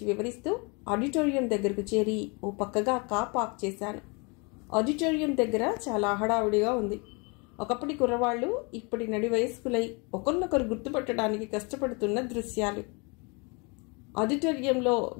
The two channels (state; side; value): quieter; right; 31.2 dB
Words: వివరిస్తూ ఆడిటోరియం దగ్గరకు చేరి ఓ పక్కగా కార్ పార్క్ చేశాను. ఆడిటోరియం దగ్గర చాలా హడావుడిగా ఉంది. ఒకప్పటి కుర్రవాళ్లు ఇప్పటి నడి వయస్కులై ఒకరినొకరు గుర్తుపట్టడానికి కష్టపడుతున్న దృశ్యాలు. ఆడిటోరియంలో